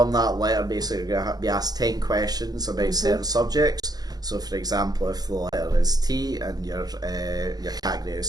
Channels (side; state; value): left; late; 0.19 ms